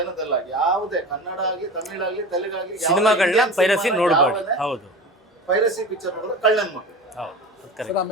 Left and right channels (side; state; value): both; normal; correlation 0.32